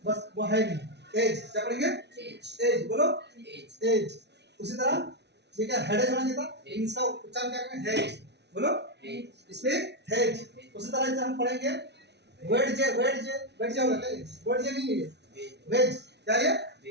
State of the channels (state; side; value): late; left; 0.50 ms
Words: बस वो है नहीं। एज। क्या पढ़ेंगे? एज। बोलो एज। उसी तरह ये क्या हेडेज होना चाहिए था, इसका उच्चारण क्या करेंगे? हेज। बोलो इस पे हेज। उसी तरह से हम पढ़ेंगे वेज होगा क्या ये? वेज नहीं है ये, वेज क्या ये?